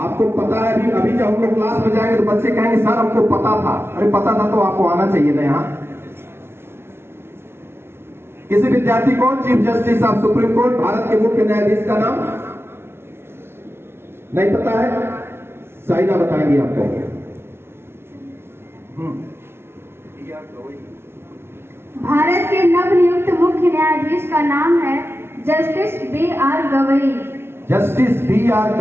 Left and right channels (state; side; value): late; left; 0.12 ms